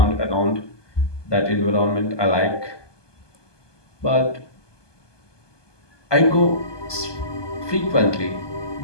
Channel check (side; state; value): right; late; 1.2 ms